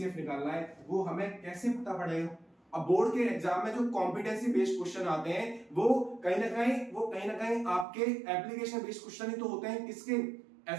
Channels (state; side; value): drops out; left; at 7.9 s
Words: निकालना है, वो हमें कैसे पता पड़ेगा। अब बोर्ड के एग्जाम में जो कॉम्पिटेंसी बेस्ड क्वेश्चन आते हैं वो कहीं ना कहीं आपके एप्लीकेशन बेस्ड क्वेश्चन ही तो होते हैं, किसके,